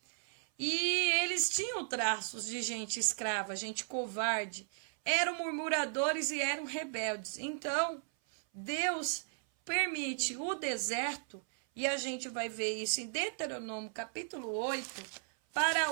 E eles tinham traços de gente escrava, gente covarde. Eram murmuradores e eram rebeldes. Então, Deus permite o deserto, e a gente vai ver isso em Deuteronômio capítulo 8, para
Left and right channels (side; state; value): left; silent; 54 dB below the other